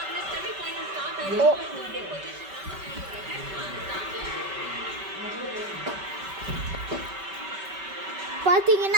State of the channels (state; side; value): late; left; 5.2 ms